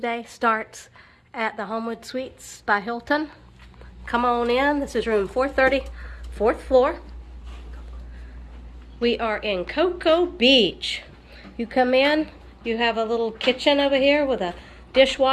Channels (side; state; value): both; identical; correlation 1.00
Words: starts at the Homewood Suites by Hilton. Come on in. This is room 430, 4th floor. We are in Cocoa Beach. You come in, you have a little kitchen over here with a